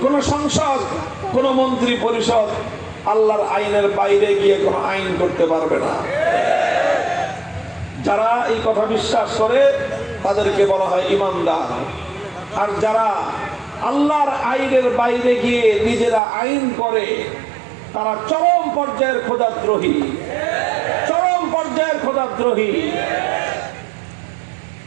কোন সংসদ, কোন মন্ত্রী পরিষদ আল্লাহর আইনের বাইরে গিয়ে কোন আইন করতে পারবে না। যারা এই কথা বিশ্বাস করে তাদেরকে বলা হয় ইমানদার। আর যারা আল্লাহর আইনের বাইরে গিয়ে নিজেরা আইন করে, তারা চরম পর্যায়ের খোদাদ্রোহী, চরম পর্যায়ের খোদাদ্রোহী।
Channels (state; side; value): drops out; left; at 16.2 s